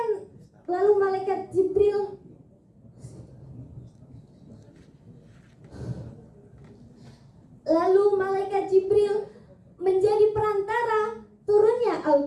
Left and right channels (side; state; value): both; identical; correlation 1.00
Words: lalu malaikat Jibril menjadi perantara turunnya